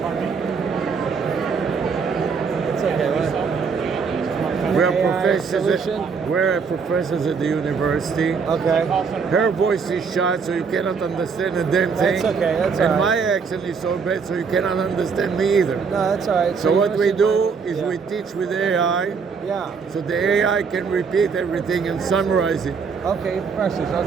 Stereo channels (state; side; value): quieter; left; 5.5 dB